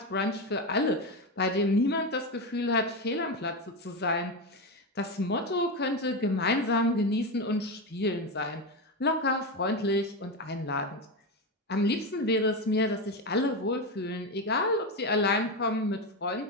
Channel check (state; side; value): normal; both; correlation 0.14